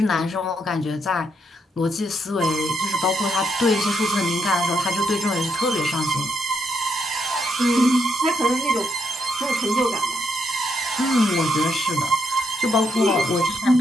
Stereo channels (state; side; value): normal; both; correlation 0.78